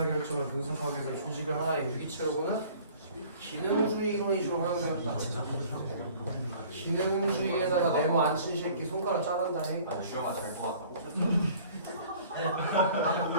분석하기 위해서 조직을 하나의 유기체로 보는 기능주의 이론이 주로 활용되었다. 기능주의에다가 네모 안 친 새끼 손가락 자른다니. 주영아 잘것 같다고.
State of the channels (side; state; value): both; inverted; correlation -0.51